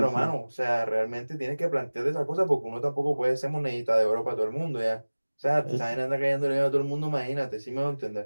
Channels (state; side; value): inverted; both; correlation -1.00